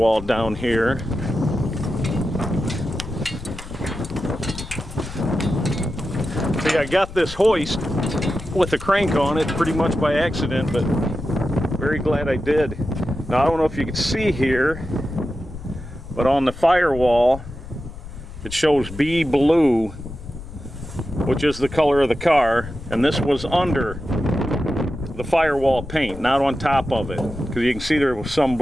down here. See, I got this hoist with a crank on it pretty much by accident, but very glad I did. Now I don't know if you can see here, but on the firewall it shows B blue, which is the color of the car, and this was under the firewall paint, not on top of it, because you can see there was some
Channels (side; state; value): left; noise; rumble, 13 dB below the sound